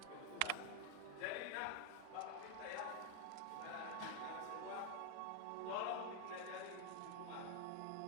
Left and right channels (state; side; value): different; both; correlation 0.00